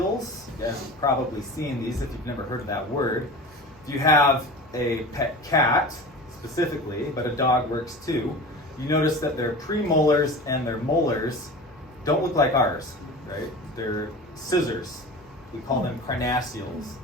You guys have probably seen these if you've never heard of that word. If you have a pet cat, specifically, but a dog works too, you notice that their premolars and their molars don't look like ours, right? They're scissors. We call them carnassials.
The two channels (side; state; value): both; normal; correlation 0.34